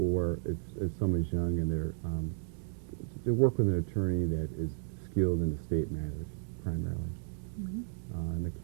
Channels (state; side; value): silent; left; digital silence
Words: if someone's young and they're to work with an attorney that is skilled in estate matters primarily. An